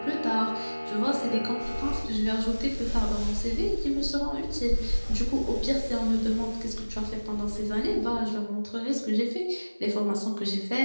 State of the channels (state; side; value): inverted; both; correlation -1.00